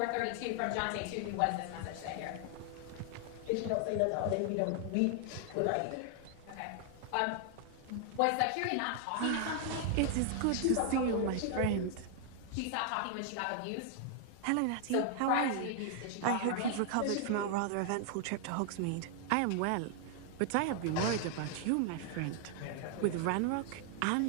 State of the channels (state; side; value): different; both; correlation 0.00